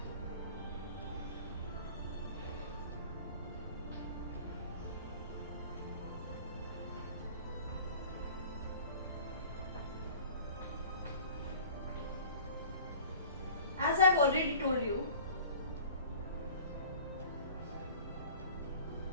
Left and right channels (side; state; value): both; inverted; correlation -0.44